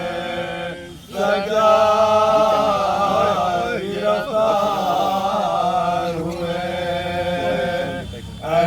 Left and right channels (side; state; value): both; identical; correlation 1.00